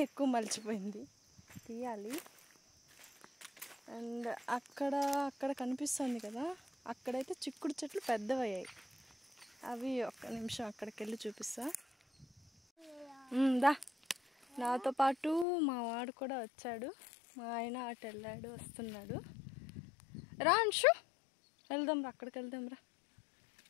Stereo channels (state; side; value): drops out; right; at 15.5 s